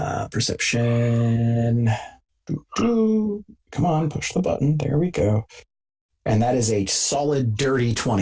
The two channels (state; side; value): identical; both; correlation 1.00